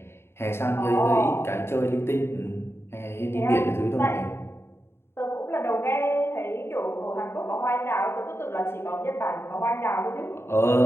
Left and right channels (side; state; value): right; late; 0.12 ms